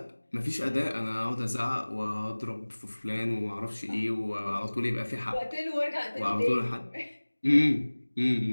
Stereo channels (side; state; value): both; inverted; correlation -1.00